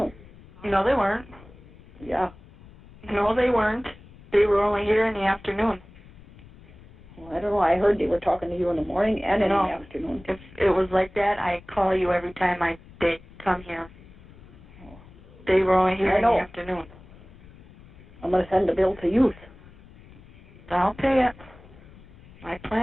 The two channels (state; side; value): noise; left; rumble, 22 dB below the sound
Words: No, they weren't. Yeah. No, they weren't. They were only here in the afternoon. Well, I don't know. I heard they were talking to you in the morning and in the No. afternoon. If it was like that, I'd call you every time they come here. They were only here I in know. the afternoon. I'm going to send the bill to youth. I'll pay it. I